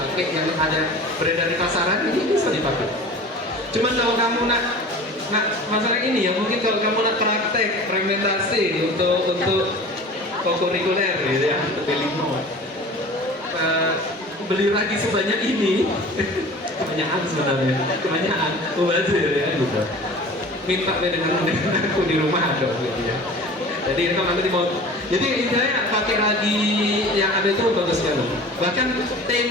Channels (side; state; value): both; normal; correlation 0.40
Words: yang ada beredar di pasaran, ini bisa dipakai. Cuman kalau kamu nak masalah ini ya, mungkin kalau kamu nak praktek fermentasi untuk kokurikuler gitu ya, untuk limo, beli ragi sebanyak ini, kebanyakan sebenarnya, kebanyakan mubazir ya gitu. Minta dengan aku di rumah ada gitu ya. Jadi itu nanti mau. Jadi intinya pakai ragi yang ada itu bagus sekali. Bahkan